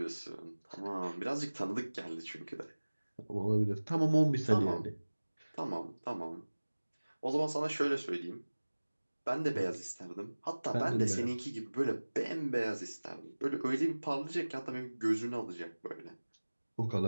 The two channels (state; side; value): inverted; both; correlation -1.00